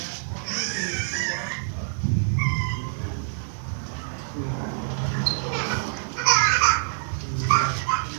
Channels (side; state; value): left; silent; digital silence